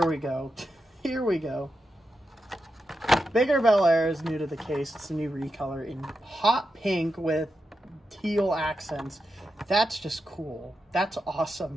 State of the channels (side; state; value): both; normal; correlation 0.87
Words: we go. Here we go. Bigger Bel Air is new to the case. It's a new recolor in hot pink with teal accents. That's just cool. That's